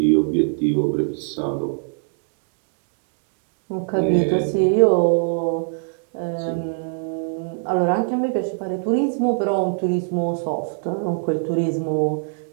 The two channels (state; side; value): silent; left; digital silence